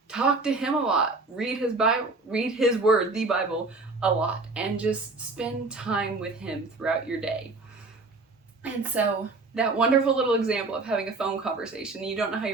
talk to him a lot. Read his Bible, read his word, the Bible, a lot. And just spend time with him throughout your day. And so that wonderful little example of having a phone conversation, you don't know how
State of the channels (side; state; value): left; quieter; 3.5 dB